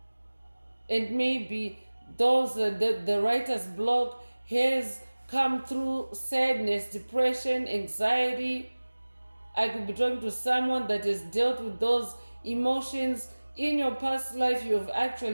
and maybe those the writer's block has come through sadness, depression, anxiety. I could be talking to someone that has dealt with those emotions in your past life. You have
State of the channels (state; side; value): inverted; both; correlation -1.00